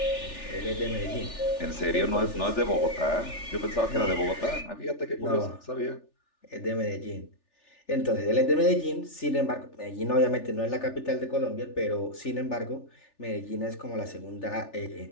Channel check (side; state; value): right; late; 3.4 ms